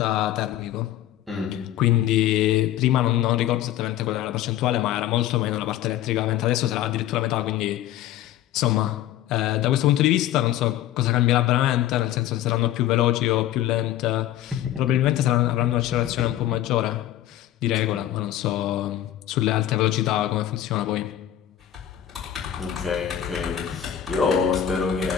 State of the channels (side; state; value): right; quieter; 12.1 dB